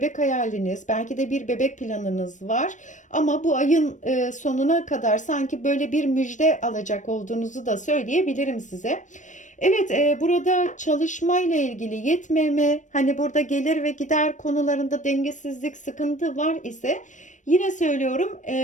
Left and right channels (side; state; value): right; late; 0.36 ms